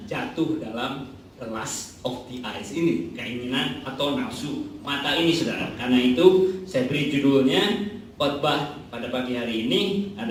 jatuh dalam the lust of the eyes ini, keinginan atau nafsu mata ini saudara. Karena itu saya beri judulnya khotbah pada pagi hari ini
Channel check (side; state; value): both; identical; correlation 1.00